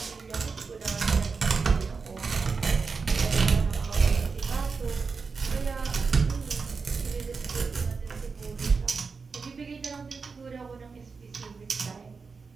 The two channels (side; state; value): left; quieter; 4.9 dB